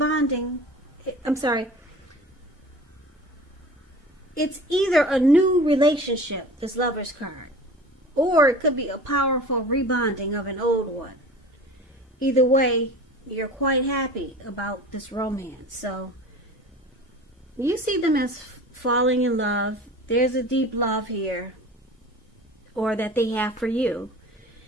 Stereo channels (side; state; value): both; normal; correlation 0.39